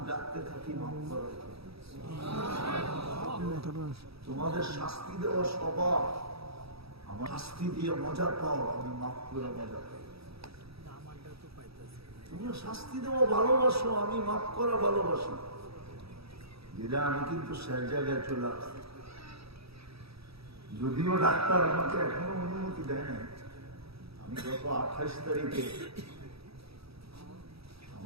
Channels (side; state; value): left; late; 0.77 ms